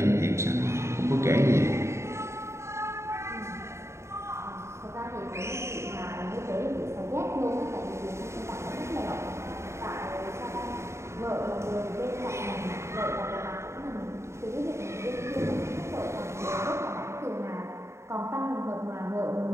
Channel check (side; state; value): left; late; 0.13 ms